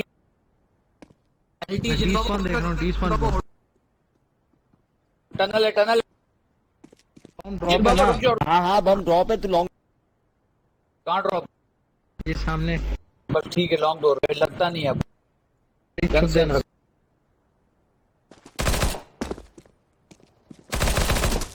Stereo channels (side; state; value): both; identical; correlation 1.00